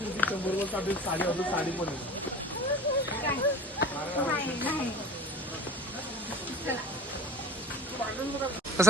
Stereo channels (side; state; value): both; normal; correlation 0.42